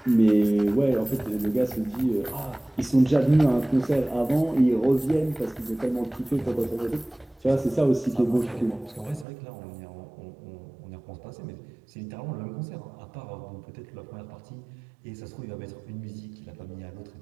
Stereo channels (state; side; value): drops out; left; at 9.2 s